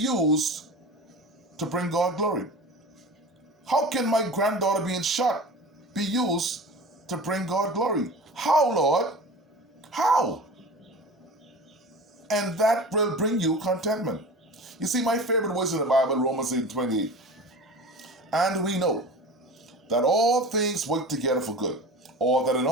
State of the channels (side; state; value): both; normal; correlation 0.35